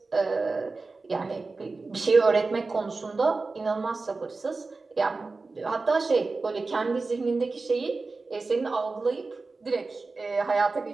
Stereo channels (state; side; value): quieter; left; 3.8 dB